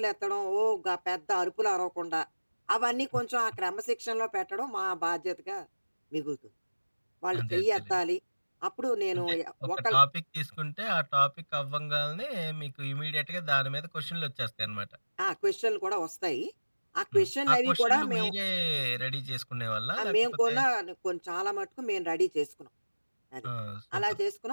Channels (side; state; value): both; inverted; correlation -1.00